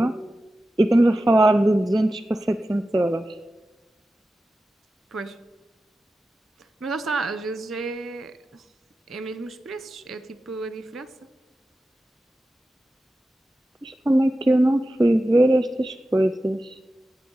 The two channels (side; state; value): both; normal; correlation 0.93